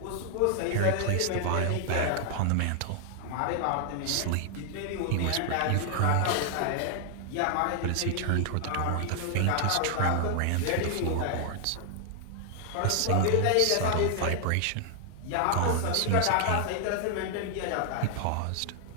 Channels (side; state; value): both; different; correlation 0.00